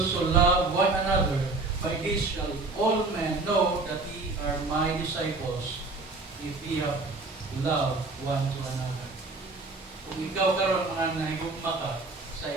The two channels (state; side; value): quieter; left; 3.5 dB